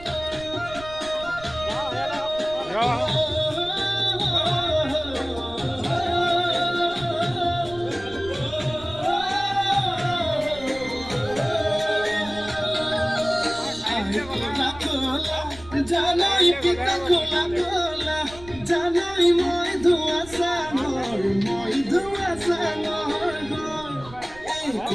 জানাই পিতা খোলা খোলা জানাই মই ধোৱা চাঙৰ এই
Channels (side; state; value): right; noise; rumble, 18 dB below the sound